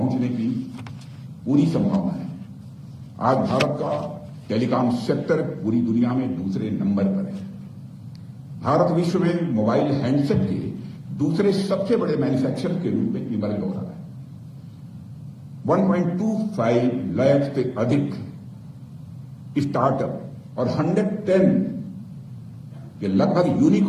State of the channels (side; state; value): both; identical; correlation 1.00